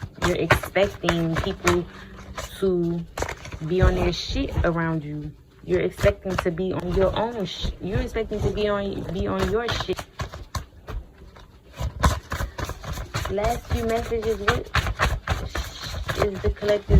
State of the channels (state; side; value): identical; both; correlation 1.00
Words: You're expecting people to be on their shit around you. You're expecting to be on your own you're expecting to be on your shit. Last few messages, what is the